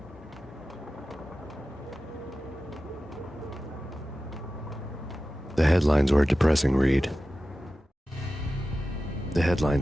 The headlines were a depressing read. The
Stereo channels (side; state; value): both; normal; correlation 0.94